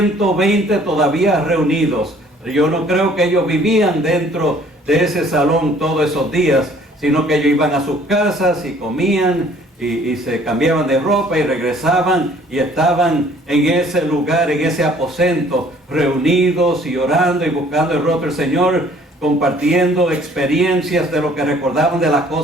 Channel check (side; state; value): both; normal; correlation 0.57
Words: todavía reunidos. Yo no creo que ellos vivían dentro de ese salón todos esos días, sino que ellos iban a sus casas y comían y se cambiaban de ropa y regresaban y estaban en ese lugar, en ese aposento, reunidos y orando y buscando el rostro del Señor, compartiendo experiencias de lo que recordaban de las